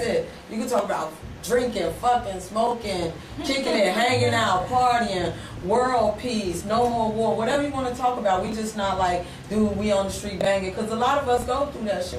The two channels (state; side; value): identical; both; correlation 1.00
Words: it. You can talk about drinking, fucking, smoking, kicking it, hanging out, partying, world peace, no more war, whatever you want to talk about. We just not like, dude, we on the street banging, because a lot of us go through that